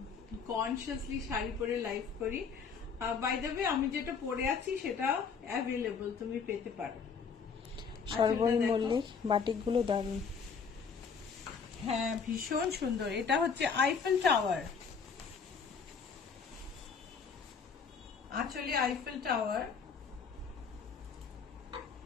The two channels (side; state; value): right; quieter; 5.8 dB